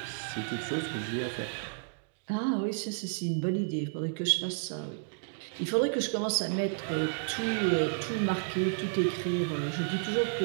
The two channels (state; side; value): silent; left; digital silence